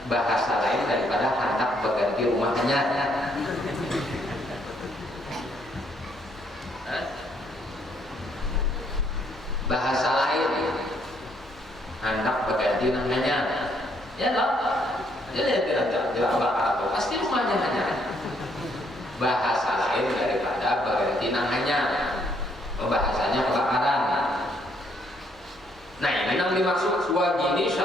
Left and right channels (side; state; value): both; normal; correlation 0.70